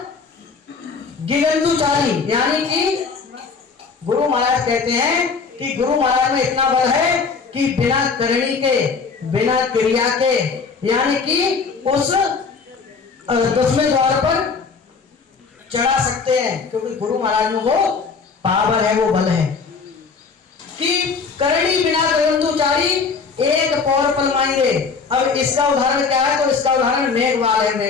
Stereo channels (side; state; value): right; quieter; 5.1 dB